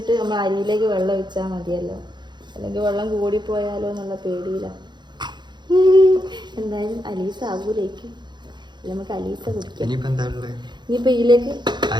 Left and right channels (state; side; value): late; left; 0.21 ms